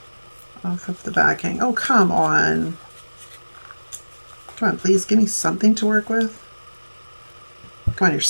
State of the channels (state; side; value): inverted; both; correlation -1.00